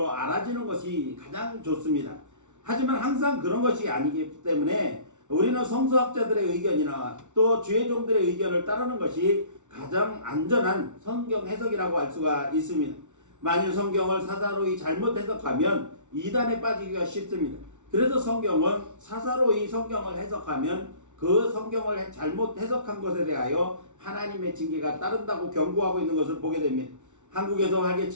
알아지는 것이 가장 좋습니다. 하지만 항상 그런 것이 아니기 때문에 우리는 성서학자들의 의견이나 또 주의 종들의 의견을 따르는 것이 가장 안전한 성경 해석이라고 할 수가 있습니다. 만일 성경을 사사로이 잘못 해석하면 이단에 빠지기가 쉽습니다. 그래서 성경은 사사로이 성경을 해석하면 그 성경을 잘못 해석한 것에 대하여 하나님의 징계가 따른다고 경고하고 있는 것을 보게 됩니다. 한국에서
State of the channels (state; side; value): late; left; 0.85 ms